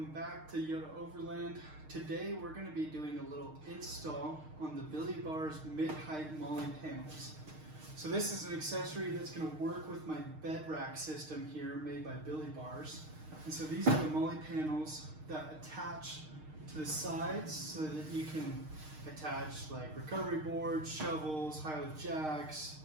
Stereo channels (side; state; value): left; late; 6.5 ms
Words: back to Yoda Overland. Today we're going to be doing a little install on the Billie Bars Mid Height Molle Panels. So this is an accessory that's going to work with my bed rack system here made by Billie Bars. And so these are the Molle panels that attach to the sides so that you can attach like recovery boards, shovels, high lift jacks,